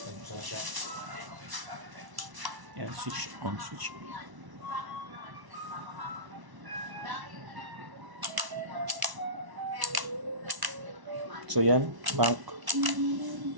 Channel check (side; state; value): left; late; 1.0 ms